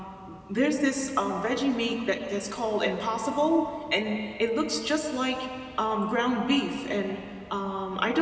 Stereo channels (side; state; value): both; identical; correlation 1.00